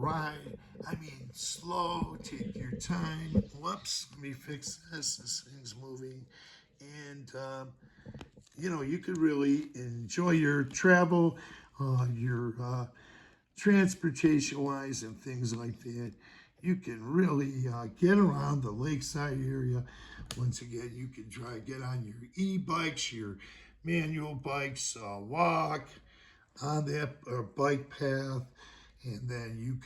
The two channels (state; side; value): identical; both; correlation 1.00